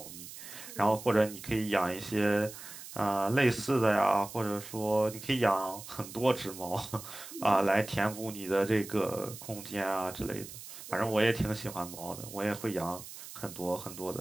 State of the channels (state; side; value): noise; right; hiss, 13 dB below the sound